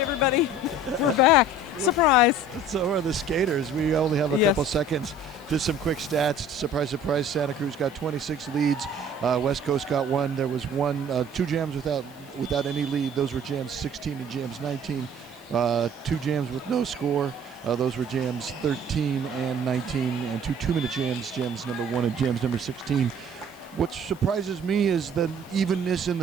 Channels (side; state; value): right; noise; hiss, 27 dB below the sound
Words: We're back. Surprise. So are the skaters. We only have a Yes. couple seconds. Just some quick stats. Surprise, surprise. Santa Cruz got 26 leads. West Coast got one. There was two jams without any lead. Those were jams 16 and jams 19. Two jams with no score. Those were jams 13 and 19, and two 2-minute jams, jams number 1 and jams number 16. What surprises me is the evenness in